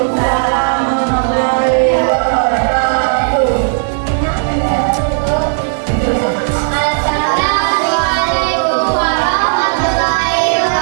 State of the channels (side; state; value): left; silent; digital silence